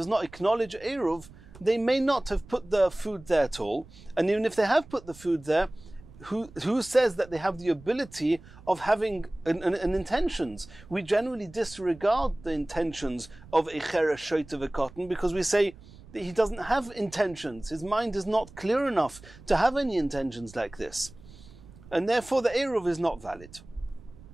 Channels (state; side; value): noise; right; rumble, 21 dB below the sound